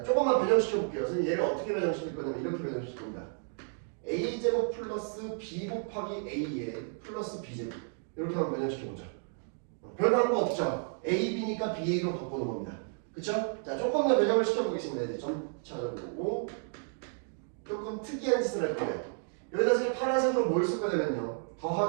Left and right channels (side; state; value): left; silent; 57 dB below the other